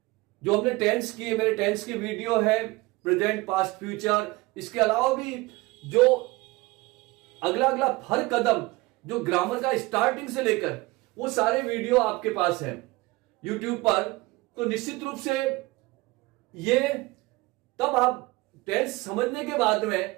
जो हमने टेंस की, मेरे टेंस की वीडियो है, प्रेजेंट, पास्ट, फ्यूचर, इसके अलावा भी जो अगला अगला हर कदम जो ग्रामर का स्टार्टिंग से लेकर वो सारे वीडियो आपके पास है यूट्यूब पर। तो निश्चित रूप से ये तब आप टेंस समझने के बाद में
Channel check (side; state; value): left; quieter; 21.9 dB